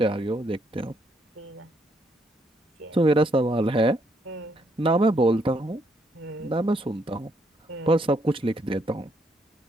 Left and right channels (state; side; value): normal; both; correlation 0.73